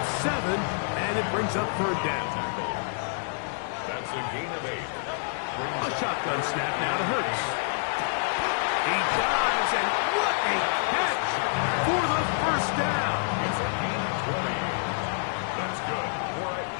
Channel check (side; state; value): right; silent; digital silence